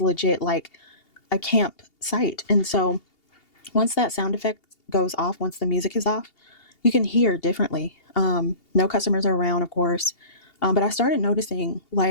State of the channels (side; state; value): right; late; 2.8 ms